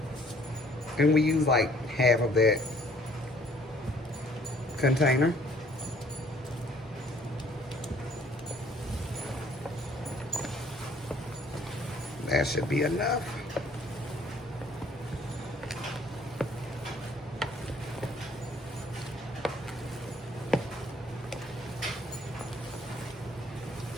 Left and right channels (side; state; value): both; normal; correlation 0.59